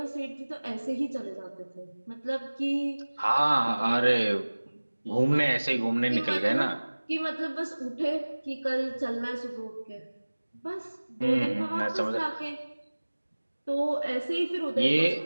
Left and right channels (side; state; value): both; inverted; correlation -1.00